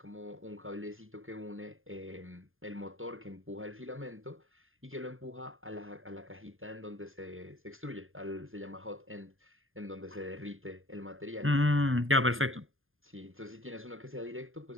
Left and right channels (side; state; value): left; late; 0.59 ms